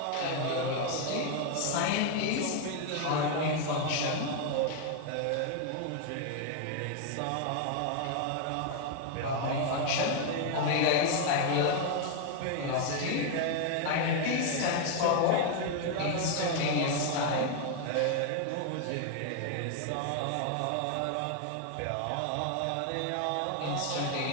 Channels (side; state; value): both; different; correlation 0.00